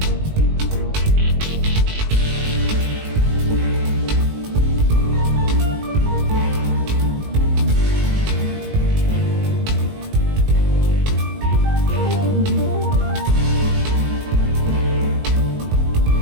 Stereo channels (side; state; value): left; late; 19 ms